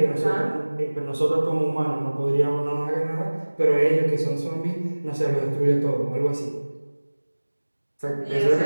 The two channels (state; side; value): inverted; both; correlation -1.00